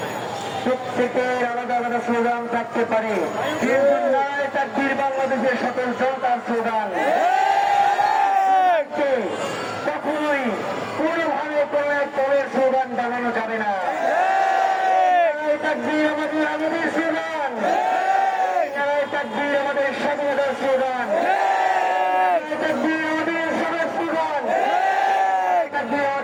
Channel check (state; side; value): identical; both; correlation 1.00